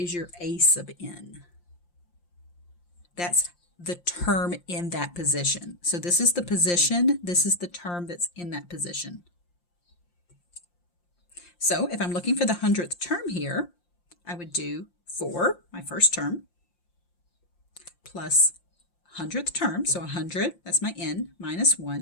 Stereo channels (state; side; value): late; right; 5.7 ms